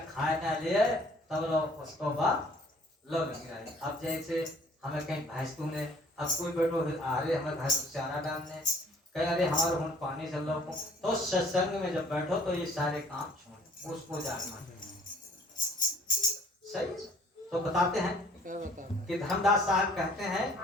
खाए ना ले तब लोग उसको बाद लोग गिराए। अब जैसे हमें कहीं भैंस ने, अब कोई बैठो अरे हमें भैंस को चारा डालने, कहीं अरे हमारे हम पानी चल रहा, तो सत्संग में जब बैठो तो ये सारे काम छोड़, उसको जागना सही। तो बताते हैं कि धर्मदास साहब कहते हैं,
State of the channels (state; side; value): normal; both; correlation 0.55